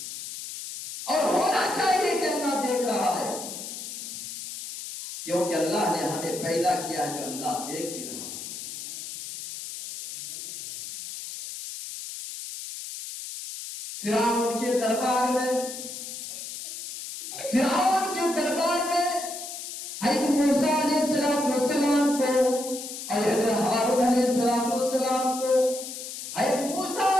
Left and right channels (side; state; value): left; noise; hiss, 9 dB below the sound